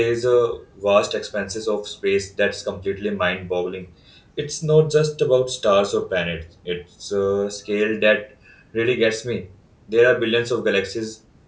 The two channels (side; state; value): both; identical; correlation 1.00